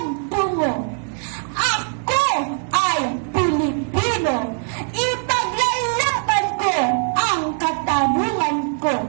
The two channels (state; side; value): silent; left; 57 dB below the other